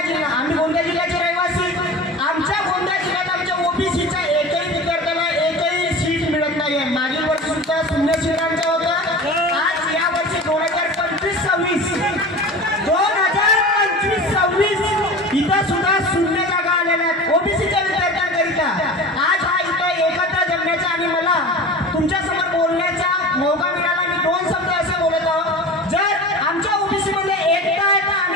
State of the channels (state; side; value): normal; both; correlation 0.34